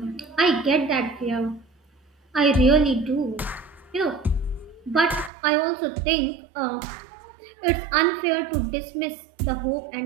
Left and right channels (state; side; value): drops out; left; at 5.3 s